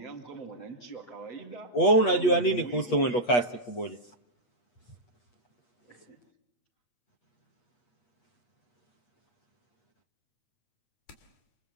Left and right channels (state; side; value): late; right; 8.4 ms